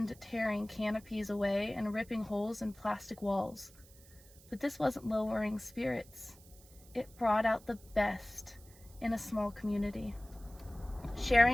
tearing canopies away and ripping holes in plastic walls. But this wasn't lowering spirits. It brought out the best in a small community.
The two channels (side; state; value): right; noise; hiss, 24 dB below the sound